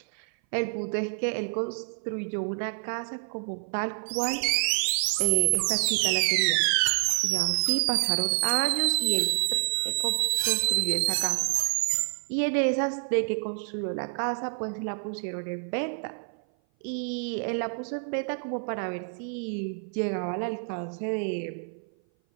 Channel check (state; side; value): silent; left; 57 dB below the other